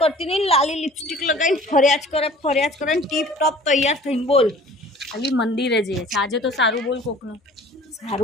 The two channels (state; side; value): normal; both; correlation 0.48